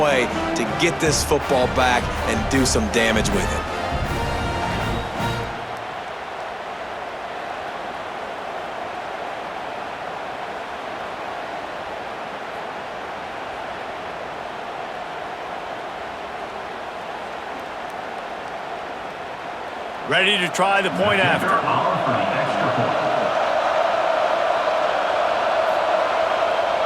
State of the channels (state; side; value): identical; both; correlation 1.00